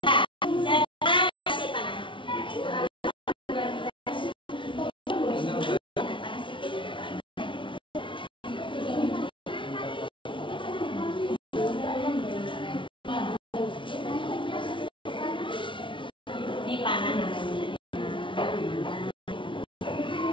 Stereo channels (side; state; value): right; late; 0.25 ms